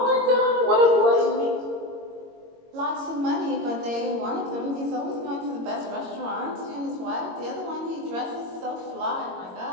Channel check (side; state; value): left; late; 22 ms